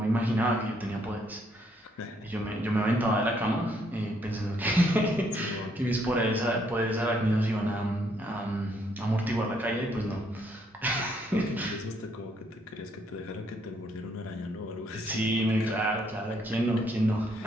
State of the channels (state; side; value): normal; both; correlation 0.70